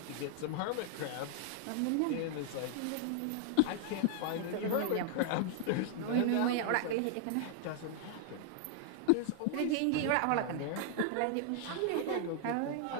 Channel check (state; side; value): different; both; correlation -0.01